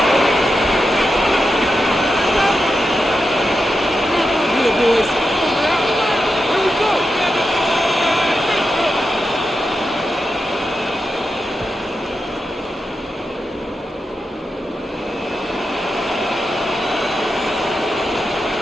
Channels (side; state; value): both; normal; correlation 0.88